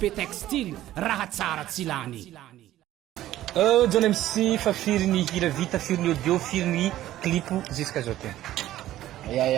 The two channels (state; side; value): quieter; left; 13.9 dB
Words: et Textile raha tsara tsy lany John MC fa firy ny hira vita firy ny audio firy ny clip jusqu'à aujourd'hui